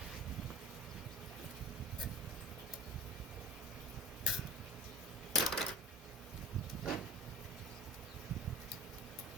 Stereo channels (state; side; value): normal; both; correlation 0.37